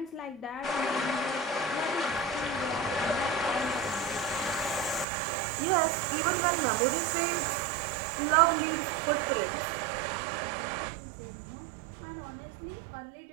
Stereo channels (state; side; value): drops out; left; at 5.1 s